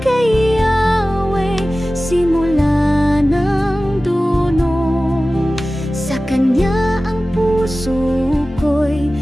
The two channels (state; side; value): normal; both; correlation 0.96